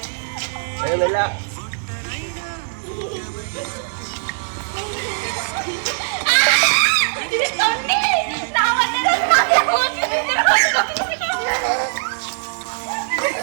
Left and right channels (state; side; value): silent; left; 65 dB below the other